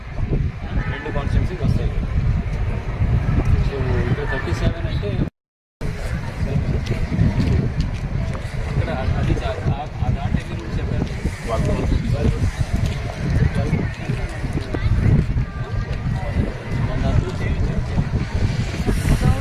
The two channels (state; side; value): identical; both; correlation 1.00